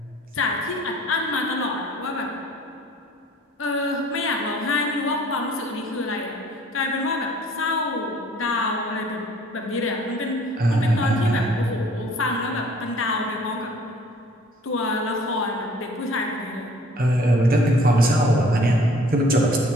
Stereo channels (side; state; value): both; normal; correlation 0.54